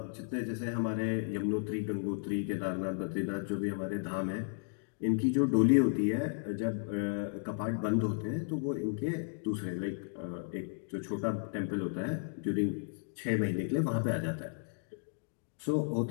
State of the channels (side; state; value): right; silent; digital silence